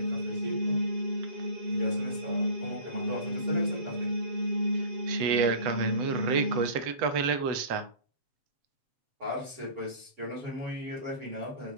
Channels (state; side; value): late; left; 8.0 ms